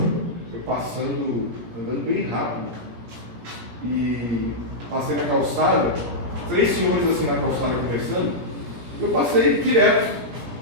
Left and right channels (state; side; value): late; left; 17 ms